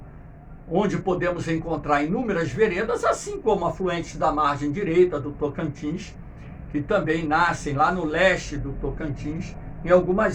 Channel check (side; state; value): both; identical; correlation 1.00